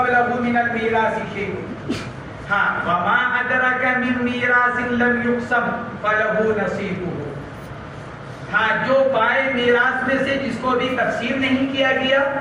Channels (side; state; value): both; identical; correlation 1.00